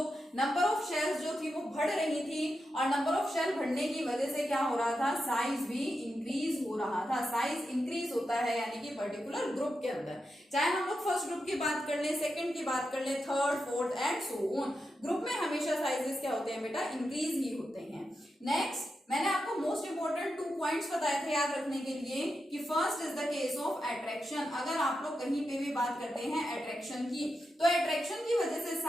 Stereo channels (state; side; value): normal; both; correlation 0.87